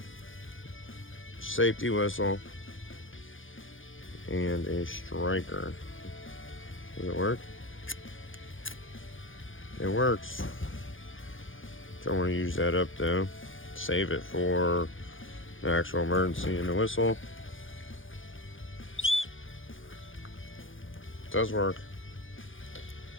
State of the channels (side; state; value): right; late; 0.58 ms